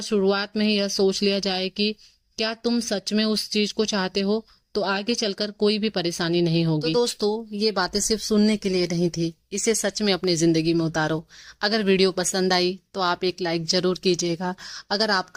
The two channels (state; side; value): identical; both; correlation 1.00